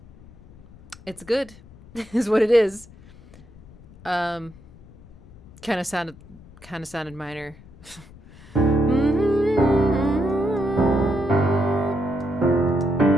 It's good, is what it is. Kind of sounded minor.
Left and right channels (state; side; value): noise; left; rumble, 22 dB below the sound